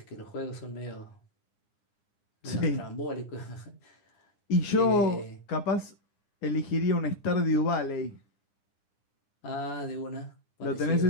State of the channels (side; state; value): right; late; 9.8 ms